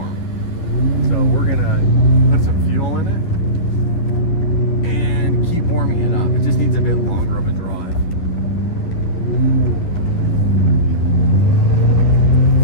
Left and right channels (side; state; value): right; late; 10 ms